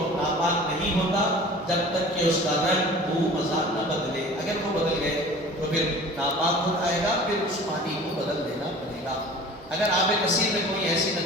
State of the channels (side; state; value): both; normal; correlation 0.42